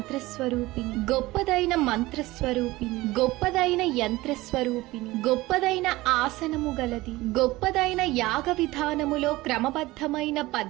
గొప్పదైన మంత్రస్వరూపిణి, గొప్పదైన యంత్రస్వరూపిణి, గొప్పదైన ఆసనము గలది, గొప్పదైన యాగ విధానములో క్రమబద్ధమైన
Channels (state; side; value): quieter; left; 19.2 dB